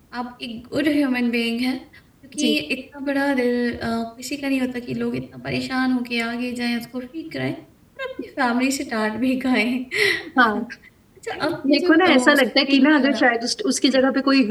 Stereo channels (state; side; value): identical; both; correlation 1.00